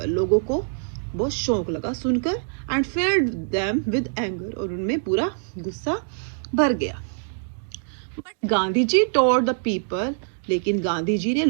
लोगों को बहुत शौक लगा सुनकर, and filled them with anger, और उनमें पूरा गुस्सा भर गया। But Gandhi ji told the people, लेकिन गांधी जी ने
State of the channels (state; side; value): silent; left; digital silence